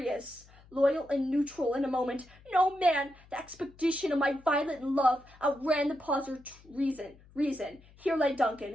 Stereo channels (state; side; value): noise; left; hum, 25 dB below the sound